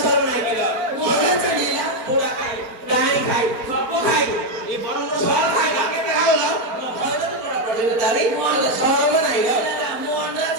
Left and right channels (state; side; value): late; left; 4.4 ms